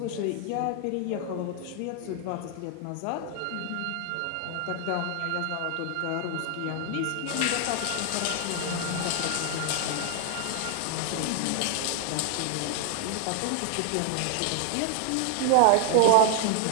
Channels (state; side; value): different; both; correlation 0.00